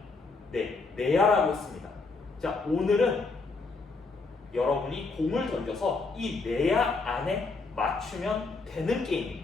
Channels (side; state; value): right; quieter; 4.0 dB